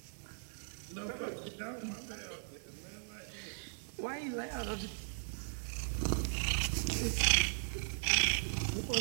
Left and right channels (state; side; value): silent; left; digital silence